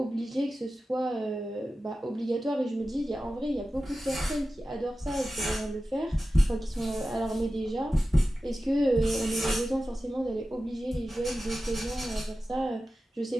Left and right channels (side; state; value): both; normal; correlation 0.94